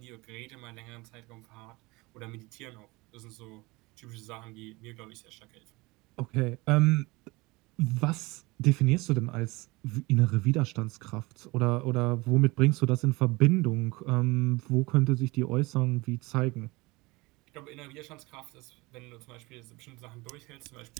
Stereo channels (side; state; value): left; quieter; 23.6 dB